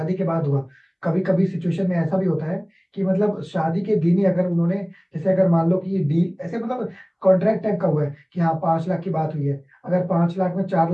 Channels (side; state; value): both; identical; correlation 1.00